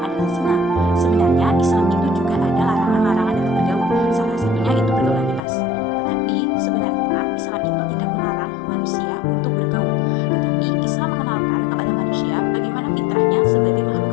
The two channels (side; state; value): right; drops out; at 5.4 s